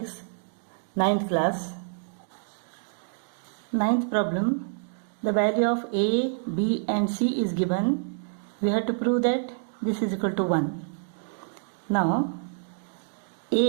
9th class. 9th problem, the value of a, b and c is given. We have to prove that this is equal to 1. Now,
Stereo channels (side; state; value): left; silent; digital silence